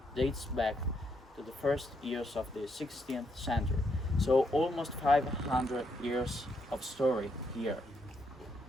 dates back to the first years of the 16th century. So almost 500 years of story here.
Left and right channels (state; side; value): normal; both; correlation 0.76